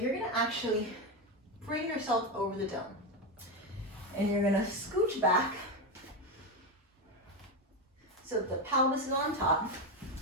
gonna actually bring yourself over the dome. And you're gonna scooch back so that the pelvis is on top.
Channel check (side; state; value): both; normal; correlation 0.12